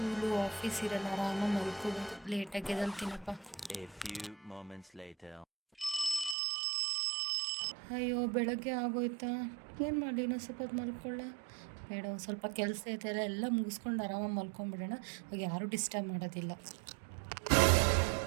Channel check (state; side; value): drops out; left; at 6.4 s